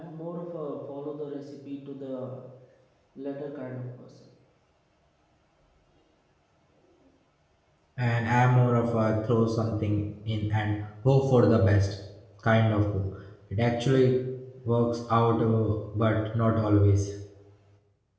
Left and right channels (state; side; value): identical; both; correlation 1.00